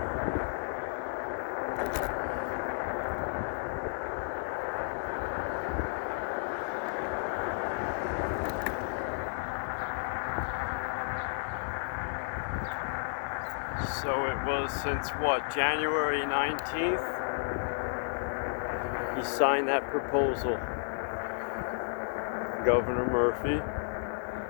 So it was since what, January 19th? He signed that proposal, Governor Murphy.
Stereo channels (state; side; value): silent; right; digital silence